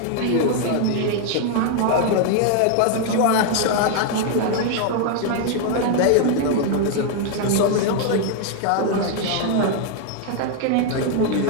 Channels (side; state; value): both; different; correlation 0.00